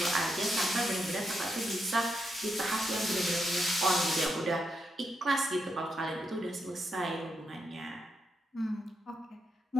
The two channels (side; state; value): both; normal; correlation 0.82